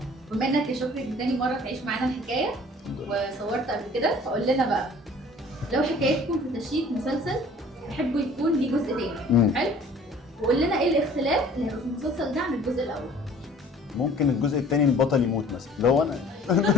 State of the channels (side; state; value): both; normal; correlation 0.50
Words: بما إنك يا شكري دي تاني مرة تعيش معانا الحكاية وصورت قبل كده، فقول لنا بقى لو حكايتكم في تشييد مسلسل تحبوا يكون ليه جزء تاني. حلو؟ وقول لنا إيه الاختلاف اللي هيبقى في المسلسل ده عن الجزء الأول. ممكن الجزء الثاني البطل يموت مثلا، اللي هو انا.